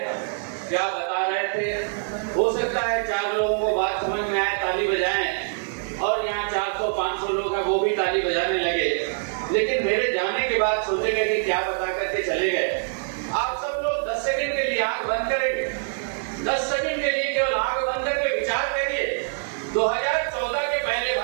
क्या बता रहे थे। हो सकता है 4 लोगों को बात समझ में आए, ताली बजाएं, और यहाँ 400-500 लोग हैं वो भी ताली बजाने लगे, लेकिन मेरे जाने के बाद सोचेंगे कि क्या बता करके चले गए। आप सब लोग 10 सेकंड के लिए आंख बंद करेंगे, 10 सेकंड के लिए केवल आंख बंद करके विचार करिए 2014 के पहले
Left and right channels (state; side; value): silent; left; digital silence